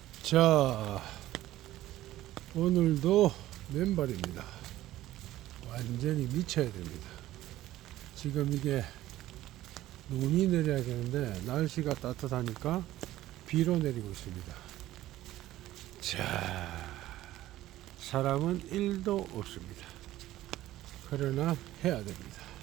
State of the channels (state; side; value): quieter; left; 14.9 dB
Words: 자, 오늘도 맨발입니다. 완전히 미쳐야 됩니다. 지금 이게 눈이 내려야 되는데 날씨가 따뜻하니까 비로 내리고 있습니다. 자, 사람은 1도 없습니다. 그러나 해야 됩니다.